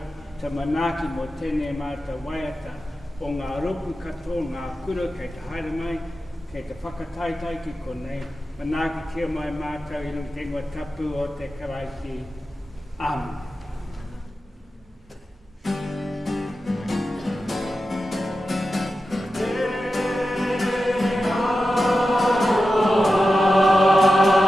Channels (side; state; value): both; normal; correlation 0.92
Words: te manaki mo tēnei māta waiata o ngā roku katoa, ngā kura kei te haere mai, kei te whakataitai ki konei, manaki kia mai mātou i rungi te ngua tapu o te karaiti. Amen.